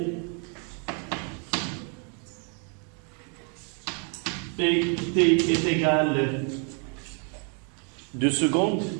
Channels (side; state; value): left; quieter; 39.0 dB